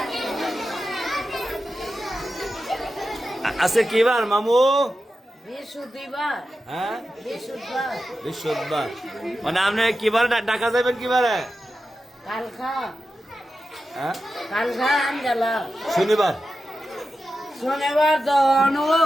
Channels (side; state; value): both; normal; correlation 0.91